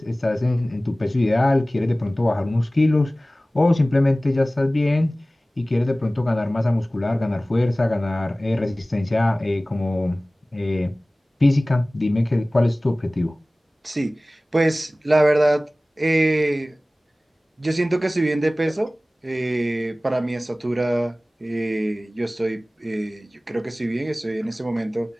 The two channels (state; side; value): normal; both; correlation 0.98